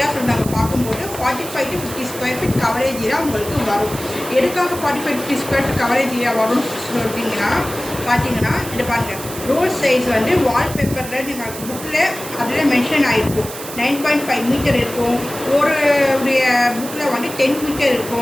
சொல்லி நாங்கள் பார்க்கும்போது 45 to 50 square feet coverage area உங்களுக்கு வரும். எதுக்காக 45 to 50 square feet coverage area வரும்னு பார்த்தீங்கன்னா இது பாருங்கள். ரோல் சைஸ் வந்து வால்பேப்பரில் நீங்கள் புக்கில் அதில் மென்ஷன் ஆகிருக்கும். 9.5 மீட்டர் இருக்கும். ஒரு புக்கில் வந்து 10 மீட்டர்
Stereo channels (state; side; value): noise; right; hiss, 11 dB below the sound